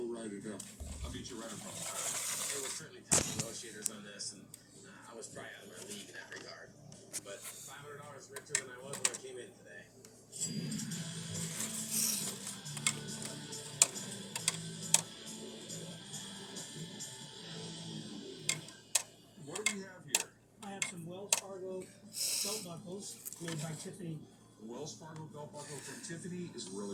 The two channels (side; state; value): both; identical; correlation 1.00